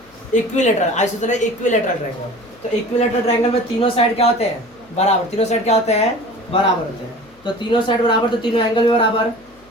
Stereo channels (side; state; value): left; noise; hum, 30 dB below the sound